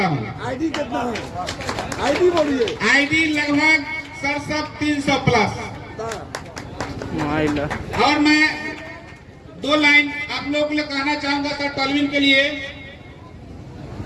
हूं। आईडी कितना है? आईडी बोलिए। आईडी लगभग 300 प्लस। और मैं 2 लाइन आप लोगों को कहना चाहूंगा सर तालबिन के लिए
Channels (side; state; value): both; identical; correlation 1.00